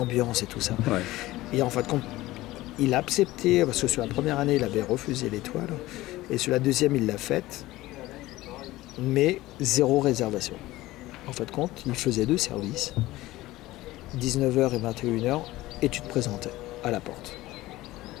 et tout ça. Et en fait compte, il a accepté parce que sur la première année il avait refusé l'étoile et sur la deuxième il l'a faite, mais 0 réservation. En fait compte, il faisait 2 services. 19h et 21h, et tu te présentais à la porte.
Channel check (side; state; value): right; quieter; 17.6 dB